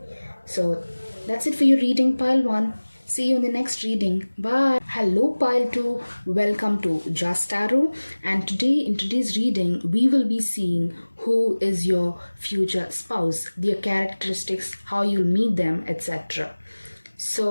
So that's it for your reading, pile 1. See you in the next reading. Bye. Hello, pile 2. Welcome to Just Tarot. And today, in today's reading, we will be seeing who is your future spouse, their characteristics, how you'll meet them, etc.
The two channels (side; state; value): both; inverted; correlation -1.00